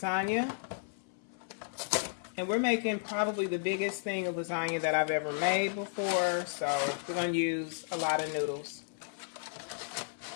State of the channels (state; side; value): silent; right; 55 dB below the other